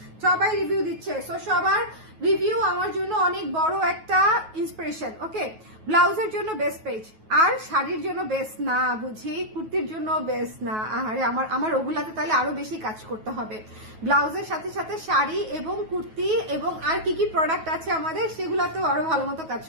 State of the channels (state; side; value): late; left; 9.3 ms